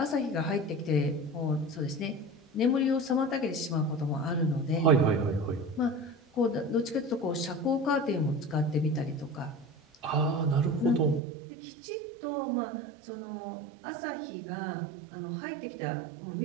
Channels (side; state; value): left; drops out; at 11.2 s